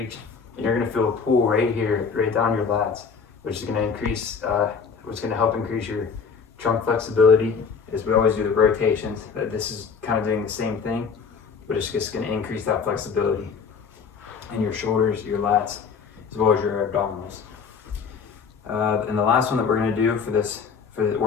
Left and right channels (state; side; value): quieter; right; 5.9 dB